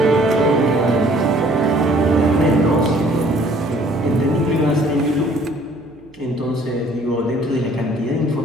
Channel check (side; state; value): right; noise; hum, 27 dB below the sound